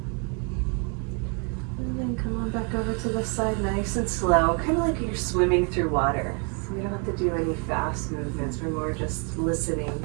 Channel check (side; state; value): left; quieter; 36.9 dB